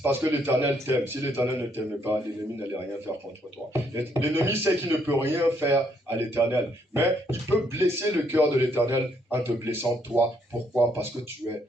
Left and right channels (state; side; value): normal; both; correlation 0.71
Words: parce que l'Éternel t'aime. Si l'Éternel ne t'aime pas, l'ennemi n'allait rien faire contre toi. L'ennemi sait qu'il ne peut rien faire à l'Éternel. Mais il peut blesser le cœur de l'Éternel en te blessant toi. Pourquoi? Parce que tu es